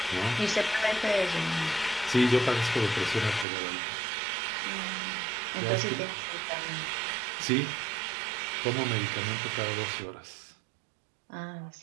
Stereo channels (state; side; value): drops out; left; at 3.5 s